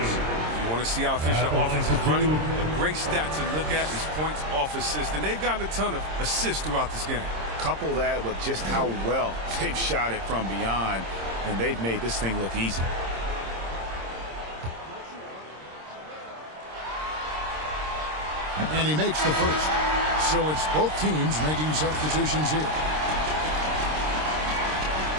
you want to see how efficient the offense is running, a great stat to look at is points off assist. And they've gotten a ton of assists throughout this game. Couple that with just how well they've shot it from beyond, and they've made this thing look easy. And he makes the first. So it's both teams making substitutions here.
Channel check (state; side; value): late; left; 26 ms